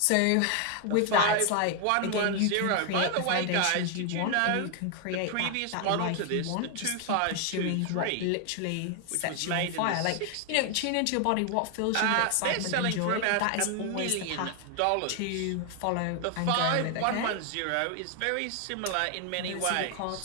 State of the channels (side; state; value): both; different; correlation 0.00